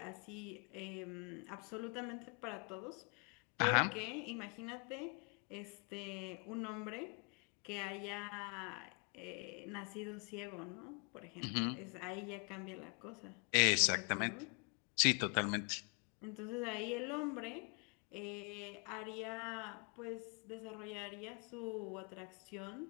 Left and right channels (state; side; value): quieter; right; 34.9 dB